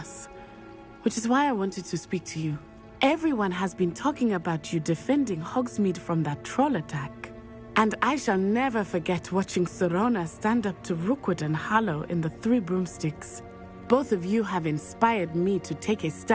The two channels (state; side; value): identical; both; correlation 1.00